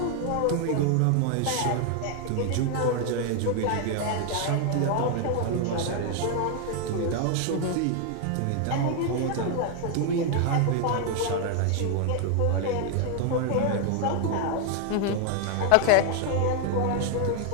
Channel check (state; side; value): different; both; correlation 0.00